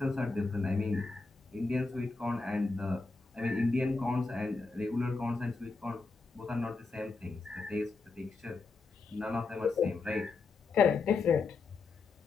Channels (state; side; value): quieter; right; 4.0 dB